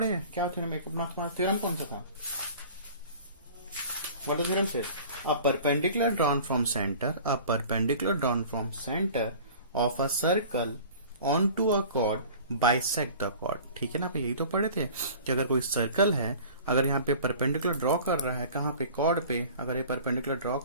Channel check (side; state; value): both; inverted; correlation -0.43